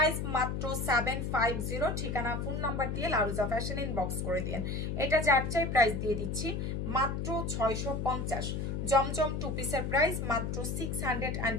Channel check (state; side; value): noise; left; hum, 2 dB below the sound